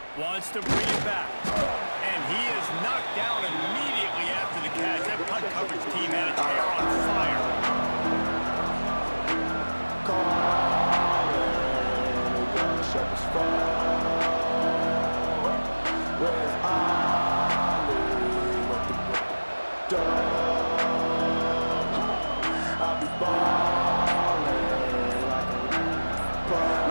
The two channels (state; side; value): inverted; both; correlation -1.00